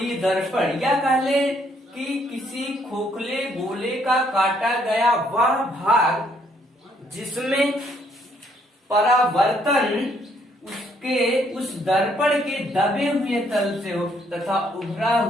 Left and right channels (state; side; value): normal; both; correlation 0.68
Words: दर्पण या कह ले कि किसी खोखले गोले का काटा गया वह भाग जिसमें परावर्तन उसके उस दर्पण के दबे हुए तल से हो तथा उभरा